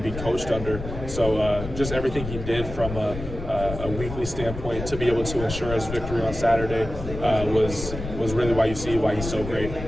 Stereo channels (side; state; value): left; noise; rumble, 8 dB below the sound